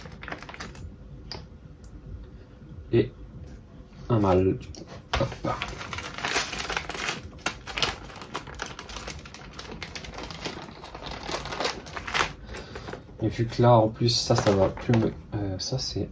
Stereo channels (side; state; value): both; identical; correlation 1.00